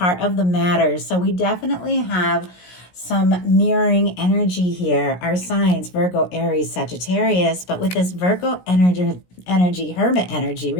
of the matter. So we definitely have some mirroring energy here. Our signs, Virgo, Aries, Sagittarius, but with this Virgo energy, Hermit energy,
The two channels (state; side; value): late; right; 17 ms